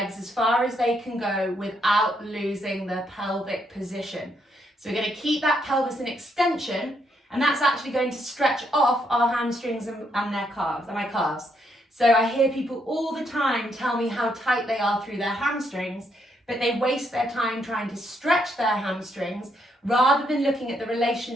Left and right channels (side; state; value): both; normal; correlation 0.75